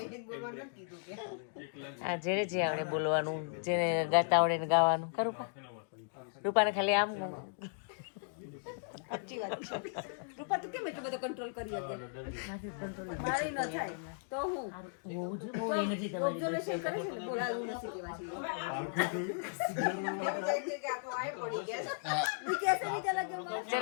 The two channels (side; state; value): right; silent; digital silence